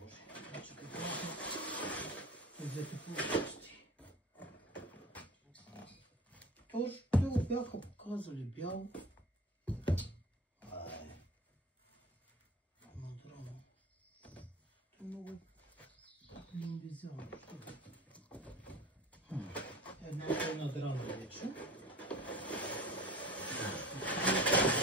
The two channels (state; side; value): normal; both; correlation 0.39